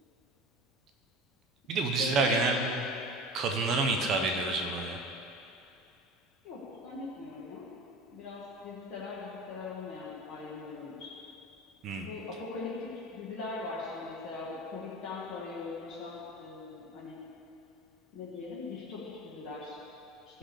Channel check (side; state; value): both; normal; correlation 0.36